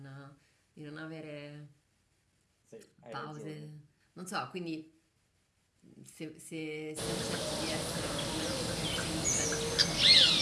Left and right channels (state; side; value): identical; both; correlation 1.00